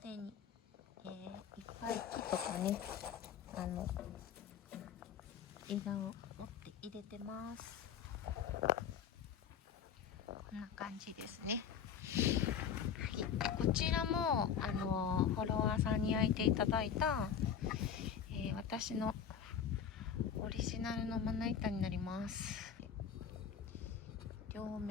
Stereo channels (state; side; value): quieter; right; 7.8 dB